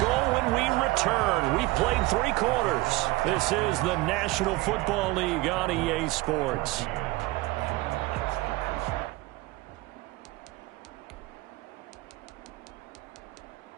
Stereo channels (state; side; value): quieter; left; 20.2 dB